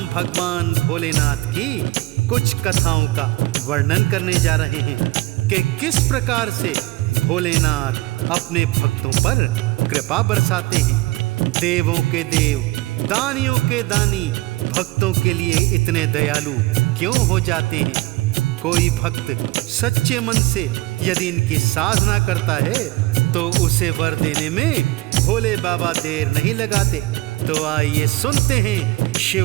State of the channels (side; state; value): left; quieter; 20.2 dB